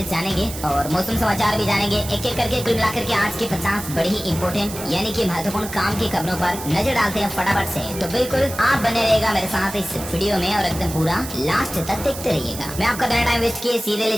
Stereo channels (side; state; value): right; noise; hiss, 11 dB below the sound